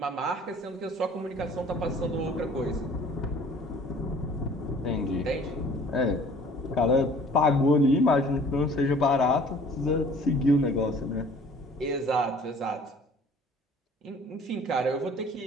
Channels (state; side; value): normal; both; correlation 0.52